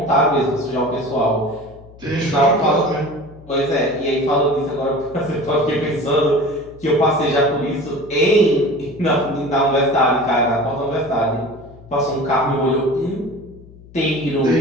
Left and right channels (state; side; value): noise; left; hum, 21 dB below the sound